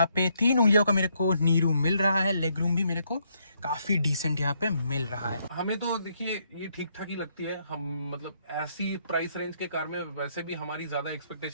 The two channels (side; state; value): both; inverted; correlation -0.73